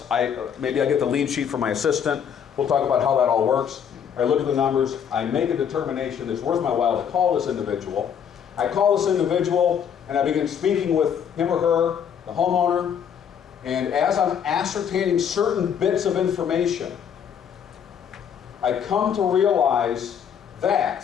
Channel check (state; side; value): quieter; right; 8.1 dB